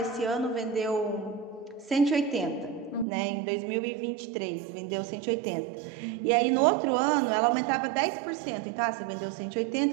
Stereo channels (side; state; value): left; drops out; at 3.1 s